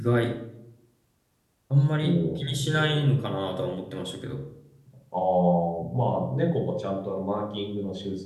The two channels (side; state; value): both; identical; correlation 1.00